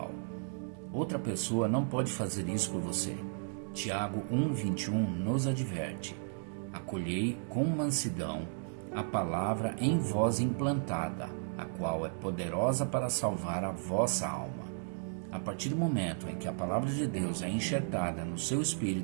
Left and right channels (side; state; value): left; silent; digital silence